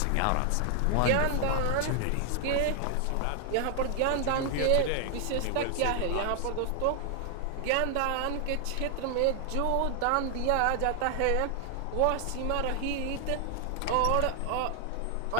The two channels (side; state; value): both; different; correlation 0.00